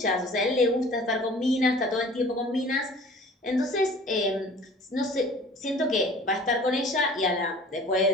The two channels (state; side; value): normal; both; correlation 0.47